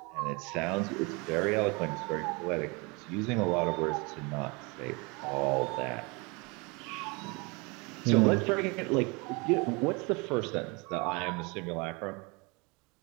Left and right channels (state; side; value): quieter; left; 28.5 dB